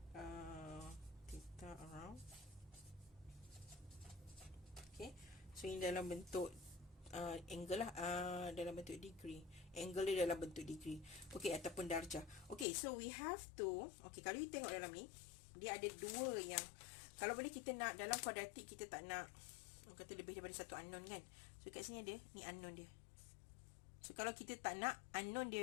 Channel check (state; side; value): drops out; right; at 12.7 s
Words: theta around. Okay, so ini dalam bentuk angle lah, dalam bentuk degree. Angle dia dalam bentuk degree. Okay, ataupun darjah. Okay, so we have to, okay, kalau you tengok dalam ni, dia ada dua yang, kalau boleh kita nak dalam kuadratik, kita tak nak kata lebih daripada satu unknown kan. So kat sini ada, ni unknown dia. So kalau kita tak nak unknown